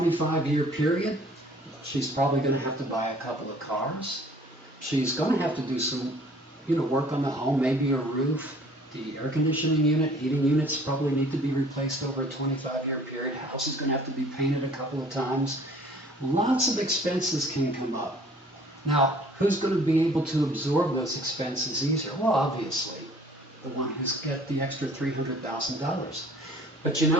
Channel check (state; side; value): normal; both; correlation 0.53